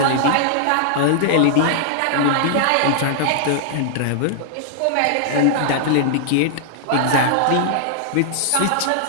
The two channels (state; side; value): different; both; correlation -0.01